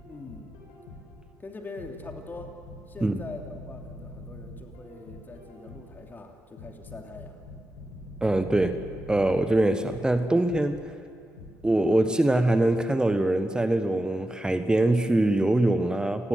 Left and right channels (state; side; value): normal; both; correlation 0.92